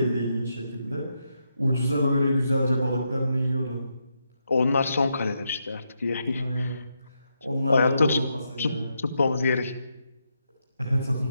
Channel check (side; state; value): both; inverted; correlation -0.82